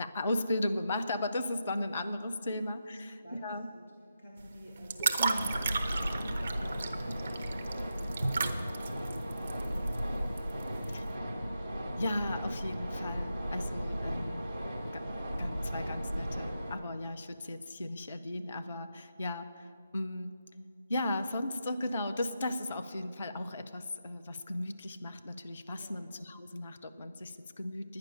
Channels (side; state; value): both; inverted; correlation -0.86